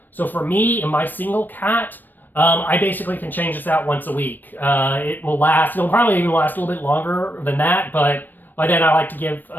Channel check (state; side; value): late; right; 0.091 ms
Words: So for me and my single cat, I basically can change this out once a week. It will last, it'll probably even last a little bit longer than that, but by then I like to give